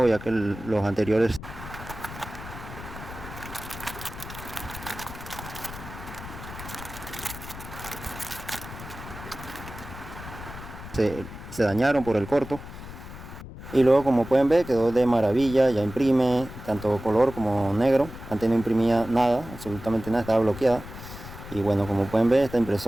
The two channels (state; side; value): noise; left; rumble, 13 dB below the sound